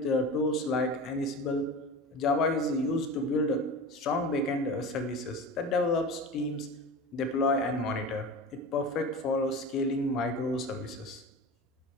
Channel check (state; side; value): normal; both; correlation 0.31